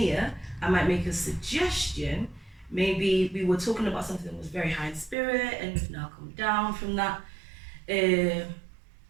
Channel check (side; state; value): left; drops out; at 5.2 s